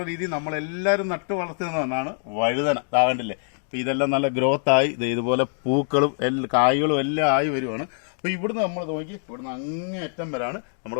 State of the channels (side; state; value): right; silent; 62 dB below the other